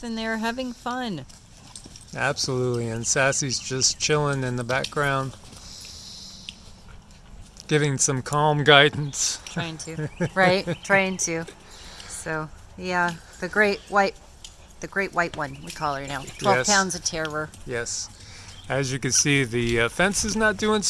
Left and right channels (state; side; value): identical; both; correlation 1.00